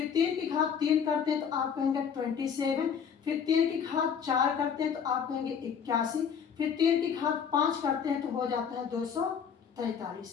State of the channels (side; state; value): right; quieter; 7.2 dB